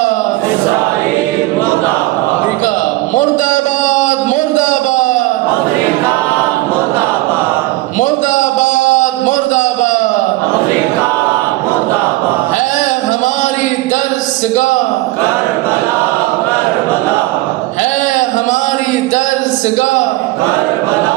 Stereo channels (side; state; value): left; quieter; 18.9 dB